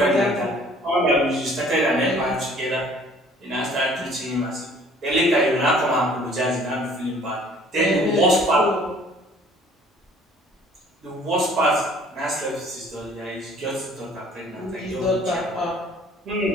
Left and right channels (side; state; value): both; normal; correlation 0.55